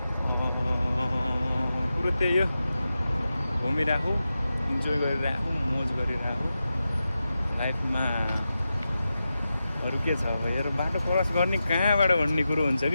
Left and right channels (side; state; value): both; inverted; correlation -0.91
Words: कुरो त्यही हो घुमिरहेको इन्जोय गरिरहेको मोज गरिरहेको लाइफमा अरू के छ अब हेर बाटो क्रस गर्ने कहाँबाट भन्ने कुरो हुन्छ